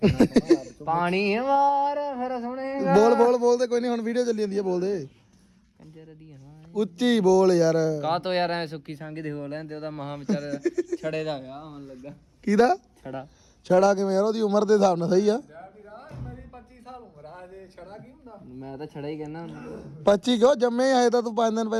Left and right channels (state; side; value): identical; both; correlation 1.00